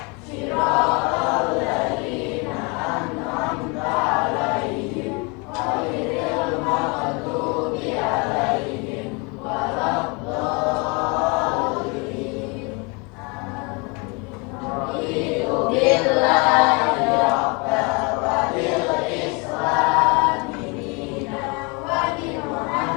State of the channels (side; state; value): right; quieter; 30.4 dB